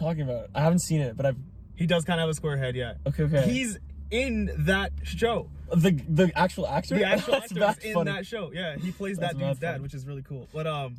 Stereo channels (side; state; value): both; identical; correlation 1.00